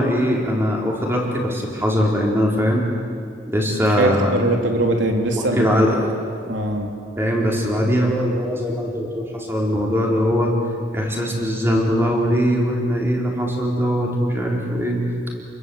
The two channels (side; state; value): both; normal; correlation 0.68